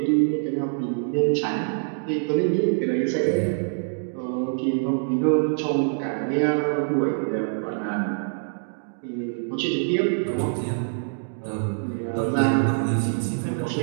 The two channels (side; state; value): left; silent; digital silence